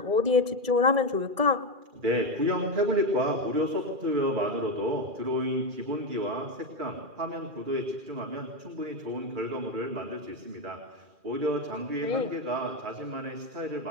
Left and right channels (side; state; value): left; late; 2.4 ms